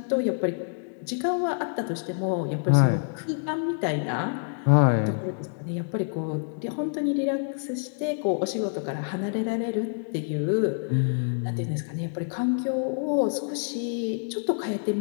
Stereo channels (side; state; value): right; silent; digital silence